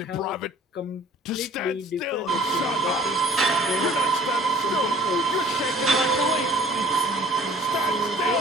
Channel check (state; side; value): normal; both; correlation 0.51